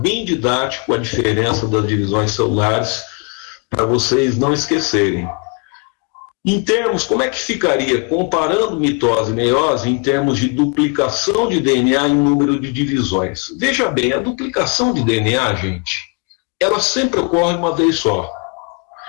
didático a diferença das divisões celulares para vocês não esquecerem. Em termos, como é que ficaria, comparando mitose e meiose, em termos de duplicação de DNA em número de divisões? Veja bem, a duplicação de DNA, gente, ela sempre ocorre uma vez só.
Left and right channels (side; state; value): right; quieter; 33.6 dB